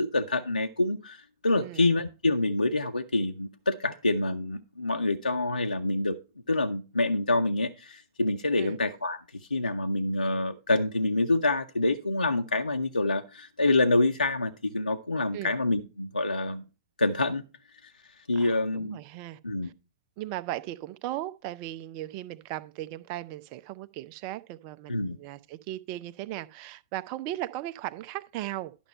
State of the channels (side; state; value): both; inverted; correlation -0.79